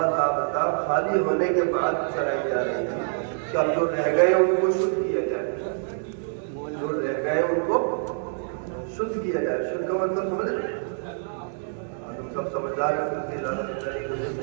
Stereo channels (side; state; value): left; silent; digital silence